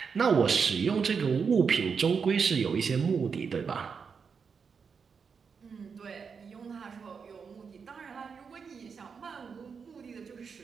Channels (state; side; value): quieter; left; 5.9 dB